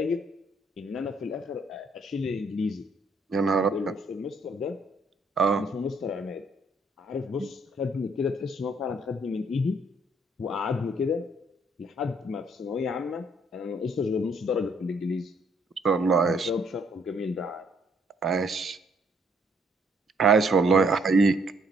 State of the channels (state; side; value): normal; both; correlation 0.67